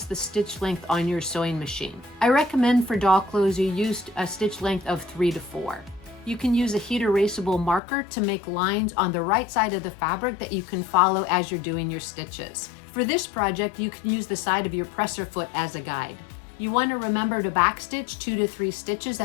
the stitch length on your sewing machine. I recommend for doll clothes you use a stitch length of 3 to 4. You can use a heat erasable marker to make lines on the right side of the fabric that you can follow as you're doing your stitches. For this project, you can use the side of your presser foot as a guide. You want to remember to backstitch 2 to 3 stitches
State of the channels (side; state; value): right; drops out; at 7.8 s